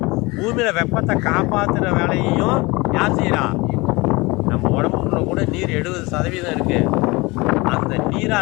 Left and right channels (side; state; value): right; quieter; 23.9 dB